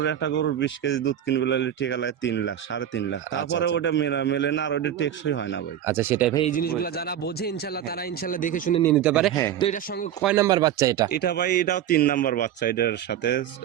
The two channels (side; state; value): left; quieter; 10.5 dB